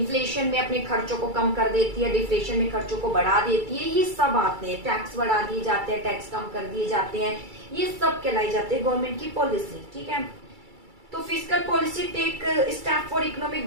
में अपने खर्चों को कम कर देती है, डिफ्लेशन में खर्चों को बढ़ा देती है, ये सब आते हैं। टैक्स बढ़ा दिए जाते हैं, टैक्स कम कर दिए जाते हैं, ये सब कहलाई जाते हैं गवर्नमेंट की पॉलिसी, ठीक है। तो fiscal policy take step for economic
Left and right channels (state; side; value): late; left; 2.3 ms